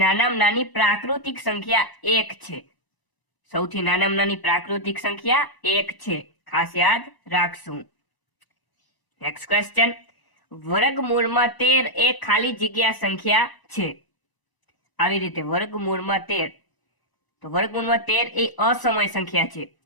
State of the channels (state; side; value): late; right; 1.0 ms